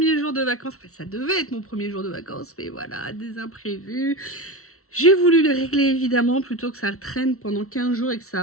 jour de vacances. Enfin, ça devait être mon premier jour de vacances, mais voilà, des imprévus. J'ai voulu les régler, évidemment, plutôt que ça traîne pendant 15 jours et que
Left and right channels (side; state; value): right; late; 0.63 ms